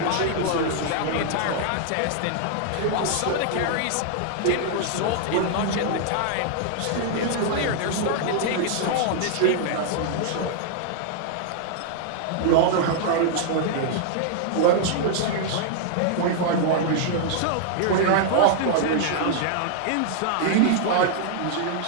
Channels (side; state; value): both; different; correlation -0.01